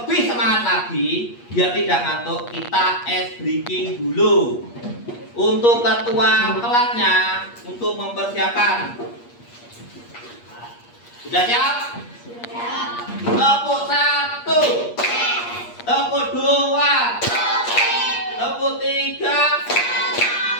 semangat lagi, biar tidak ngantuk, kita ice breaking dulu. Untuk ketua kelasnya, untuk mempersiapkan. Sudah siap? Siap. Tepuk 1, tepuk 2, tepuk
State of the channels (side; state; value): right; late; 8.4 ms